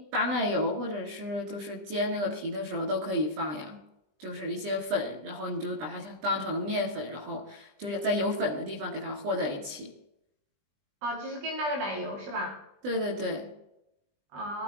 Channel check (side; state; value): left; late; 20 ms